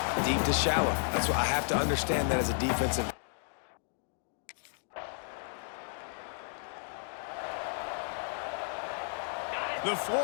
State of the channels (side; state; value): right; silent; 56 dB below the other